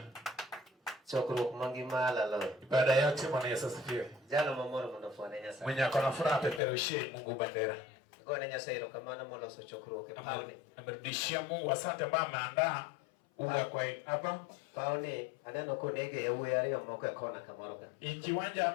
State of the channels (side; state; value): right; drops out; at 6.6 s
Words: Chokro mangima lalo. Ibada yote Bwana Yesu asifiwe. Jana mamoro mnafanya nyasa. Mwenye akona furaha peperushe Mungu bandera. Kwa nyasa hilo kama na mola so chokro ke pauni. Amerudishia Mungu asante ambaye ameandaa uga kwa hapa. Pauni adano konege ya uwe yale moko kona kamoroka. Ikiwanja